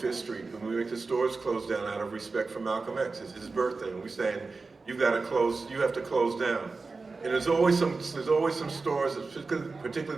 Street, and we make the stores close down out of respect for Malcolm X. It's his birthday, and we're saying, you have to close down. And there's always some stores,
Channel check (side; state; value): left; quieter; 4.0 dB